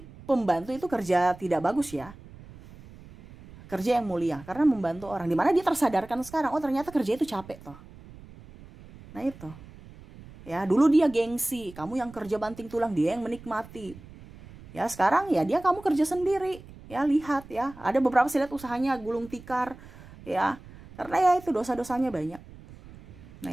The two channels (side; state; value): right; noise; rumble, 19 dB below the sound